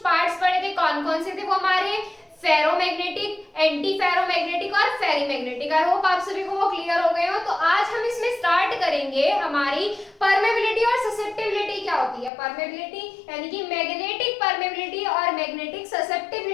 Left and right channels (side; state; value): right; drops out; at 12.3 s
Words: पार्ट्स पढ़े थे। कौन कौन से थे वो हमारे, फेरोमैग्नेटिक, एंटी फेरोमैग्नेटिक और फेरीमैग्नेटिक। आई होप आप सभी को वो क्लियर हो गए हो। तो आज हम इसमें स्टार्ट करेंगे हमारी परमेबिलिटी और ससेप्टिबिलिटी क्या होती है। परमेबिलिटी यानी कि मैग्नेटिक परमेबिलिटी और मैग्नेटिक